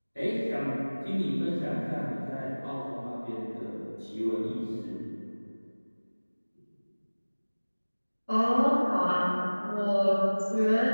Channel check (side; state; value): both; inverted; correlation -1.00